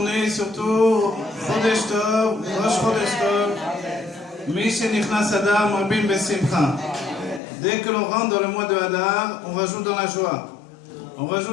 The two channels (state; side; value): drops out; right; at 7.4 s